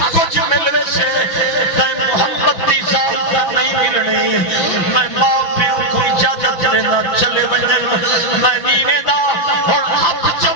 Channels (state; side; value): late; right; 5.9 ms